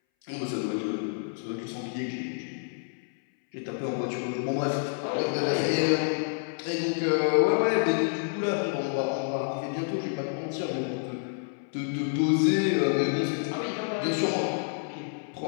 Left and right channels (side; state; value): right; silent; 59 dB below the other